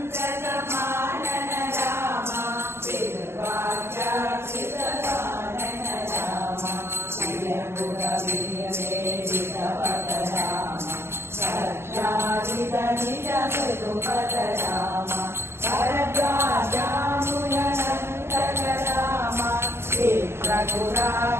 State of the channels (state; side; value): late; left; 0.12 ms